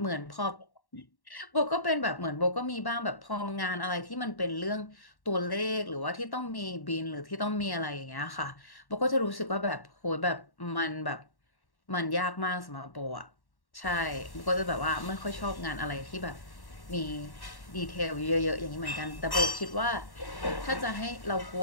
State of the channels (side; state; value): right; late; 1.1 ms